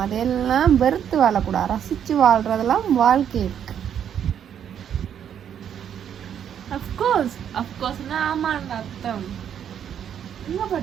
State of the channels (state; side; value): quieter; left; 9.0 dB